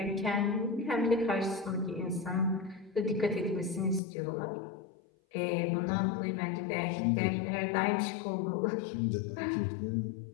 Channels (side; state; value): right; drops out; at 4.0 s